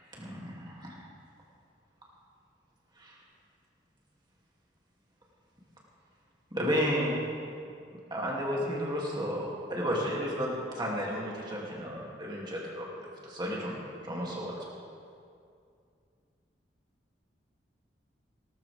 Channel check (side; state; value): both; normal; correlation 0.48